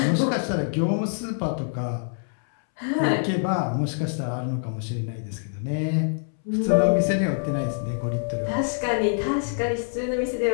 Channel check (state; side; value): silent; right; 62 dB below the other